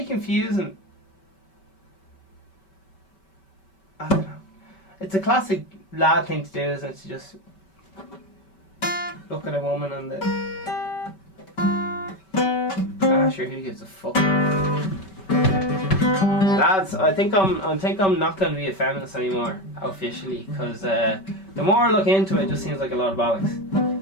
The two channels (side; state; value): right; late; 5.2 ms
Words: confusing. I don't know. It's a classic lad thing to do, isn't it? To just look at a woman on the... sure, who gives a fuck? Lads, I think I'm not going to be a feminist anymore, officially, because the more I look into it, it just seems like a lot of bollocks.